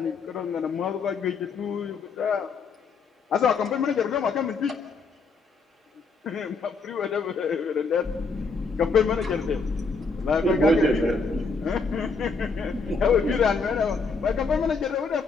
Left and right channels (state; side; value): quieter; right; 4.4 dB